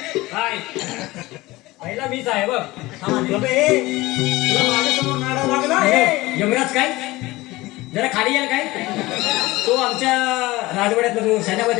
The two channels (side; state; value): right; quieter; 19.8 dB